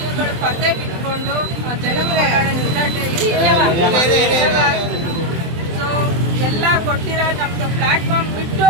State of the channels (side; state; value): left; late; 24 ms